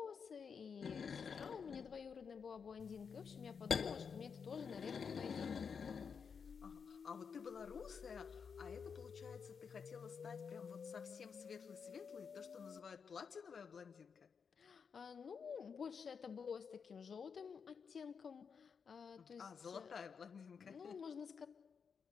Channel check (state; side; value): quieter; right; 6.2 dB